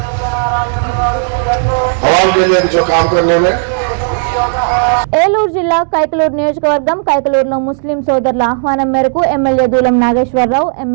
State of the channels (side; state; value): left; silent; digital silence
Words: आवाम के लिए जो काम करने में ఏలూరు జిల్లా కైకలూరు నియోజకవర్గం కైకలూరులో ముస్లిం సోదరుల ఆహ్వానం మేరకు ఎమ్మెల్యే దూలం నాగేశ్వరరావు,